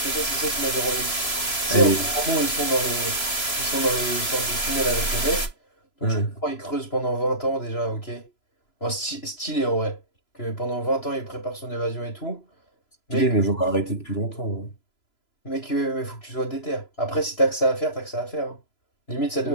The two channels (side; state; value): right; late; 3.0 ms